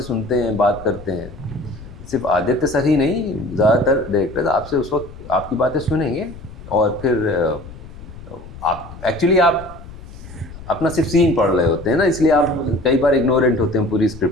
सुनते हैं, बात करते हैं। सिर्फ आदित्य सर ही नहीं, ज़्यादातर डायरेक्टर्स आपसे उस वक्त आपकी बातें सुनेंगे, और फिर आप एक्चुअली आप अपना सिर्फ सीन पढ़ रहे होते हैं ना, इसलिए आप कई बार इग्नोरेंट होते हैं पूरी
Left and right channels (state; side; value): noise; left; rumble, 16 dB below the sound